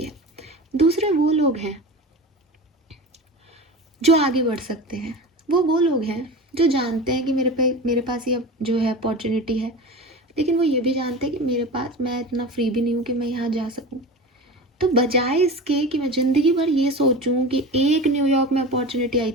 है। दूसरे वो लोग हैं जो आगे बढ़ सकते हैं, वो लोग हैं जो जानते हैं कि मेरे पास ये जो है अपॉर्चुनिटी है, लेकिन वो ये भी जानते हैं कि मेरे पास, मैं इतना फ्री भी नहीं हूँ कि मैं यहाँ जा सकूँ। तो बजाय इसके कि मैं ज़िंदगी भर ये सोचूं कि एक न्यूयॉर्क में अपॉर्चुनिटी आई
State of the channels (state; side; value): normal; both; correlation 0.30